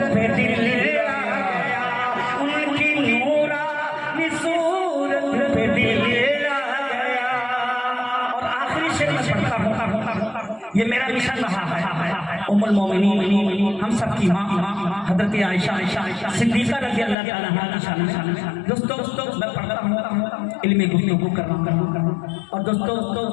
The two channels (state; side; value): drops out; right; at 17.2 s